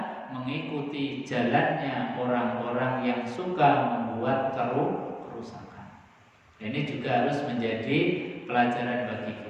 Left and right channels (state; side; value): identical; both; correlation 1.00